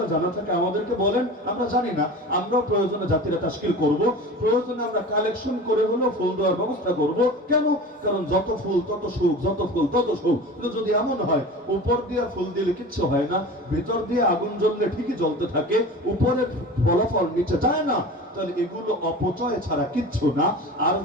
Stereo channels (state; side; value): normal; both; correlation 0.35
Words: জানা থাকে আমাদেরকে বলেন, আমরা জানি না, আমরা প্রয়োজনে জাতিরা তাশকিল করব, প্রয়োজনে আমরা কালেকশন করে হলো ফুল দেওয়ার ব্যবস্থা করব। কেন? কারণ যত ফুল তত সুখ, যত ফুল তত সুখ। কিন্তু যদি এমন হয় উপর দিয়ে ফুল দিলে কিচ্ছু হয় না, ভিতর দিয়ে আগুন জ্বললে ঠিকই জ্বলতে থাকে, উপরে ফলাফল নিচে যায় না, তাহলে এগুলো অপচয় ছাড়া কিচ্ছু না। আর